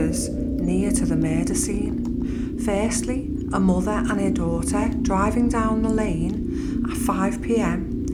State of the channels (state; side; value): identical; both; correlation 1.00